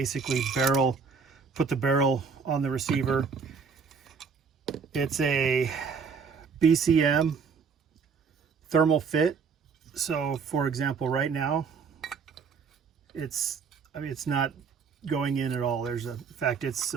put the barrel on the receiver. It's a BCM thermal fit. So for example, right now, it's not going in at all. In fact, it's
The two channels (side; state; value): left; quieter; 5.6 dB